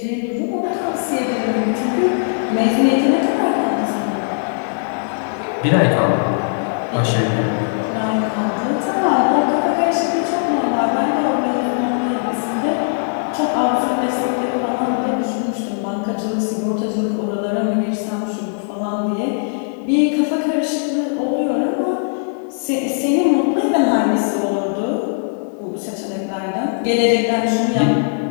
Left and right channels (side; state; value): right; silent; digital silence